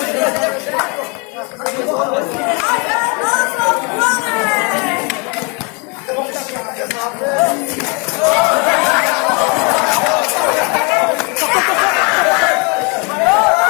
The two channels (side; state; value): right; quieter; 32.2 dB